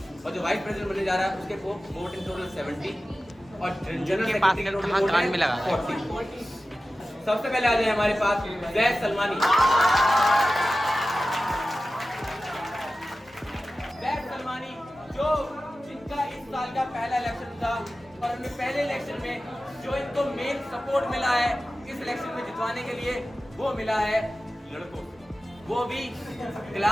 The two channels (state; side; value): normal; both; correlation 0.95